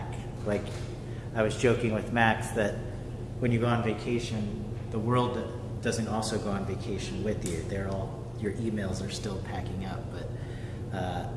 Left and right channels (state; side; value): identical; both; correlation 1.00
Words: Like I was joking with Max that when you go on vacation, the world doesn't also go on vacation with you. Your emails are still packing up. But